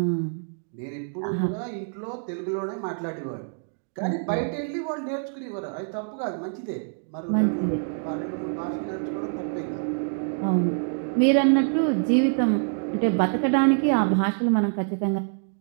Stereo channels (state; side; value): silent; left; digital silence